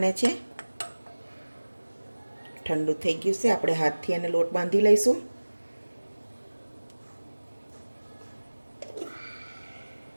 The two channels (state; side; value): inverted; both; correlation -1.00